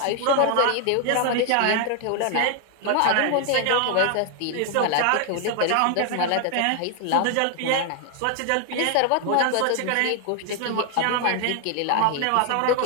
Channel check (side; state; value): both; different; correlation 0.00